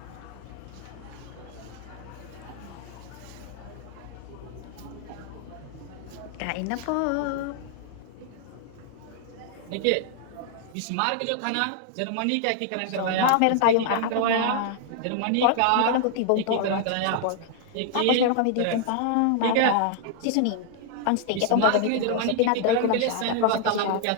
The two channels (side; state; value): both; different; correlation 0.00